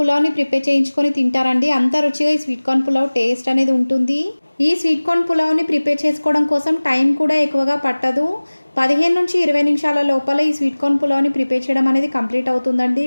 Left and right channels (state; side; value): inverted; both; correlation -1.00